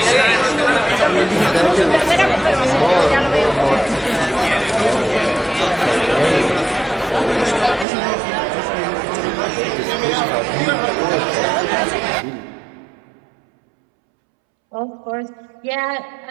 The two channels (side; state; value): left; drops out; at 7.9 s